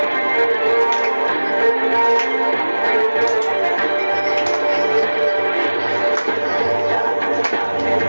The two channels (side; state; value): both; inverted; correlation -1.00